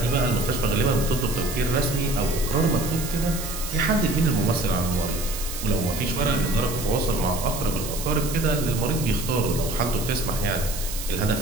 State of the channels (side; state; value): right; noise; hiss, 8 dB below the sound